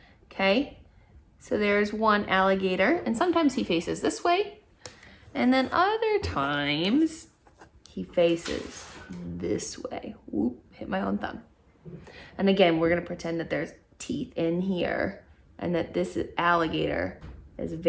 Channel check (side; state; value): both; identical; correlation 1.00